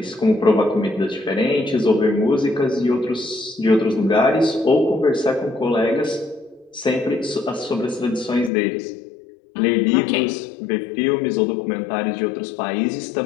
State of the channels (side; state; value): right; drops out; at 8.5 s